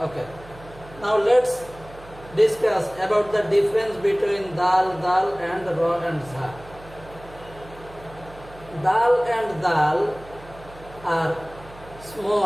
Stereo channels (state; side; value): noise; right; hum, 19 dB below the sound